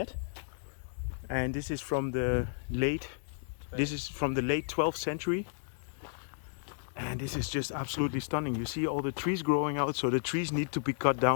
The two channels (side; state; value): right; silent; digital silence